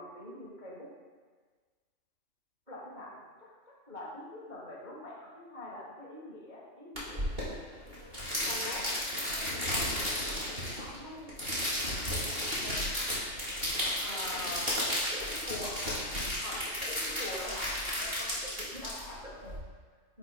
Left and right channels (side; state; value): left; late; 2.8 ms